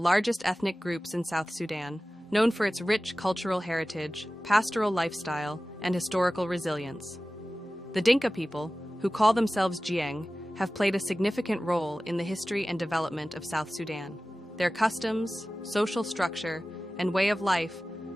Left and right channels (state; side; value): normal; both; correlation 0.96